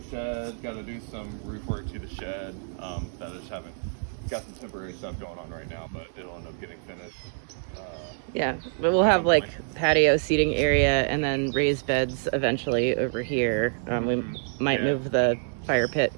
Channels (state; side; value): silent; left; digital silence